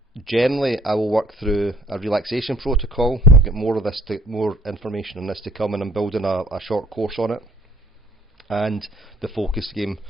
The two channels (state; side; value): normal; both; correlation 0.58